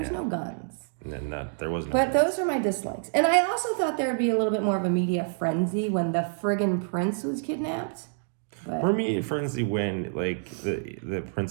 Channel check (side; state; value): left; silent; digital silence